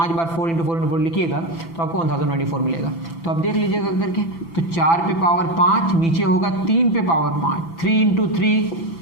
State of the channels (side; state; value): right; late; 6.0 ms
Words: बार 4 इंटू 4 लिखिएगा तो आपको 1024 मिलेगा। तो आप देख लीजिएगा करके, तो 4 पे पावर 5, नीचे होगा 3 पे पावर 5, 3 इंटू 3